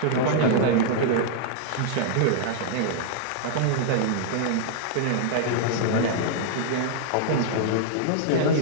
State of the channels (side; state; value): both; different; correlation -0.01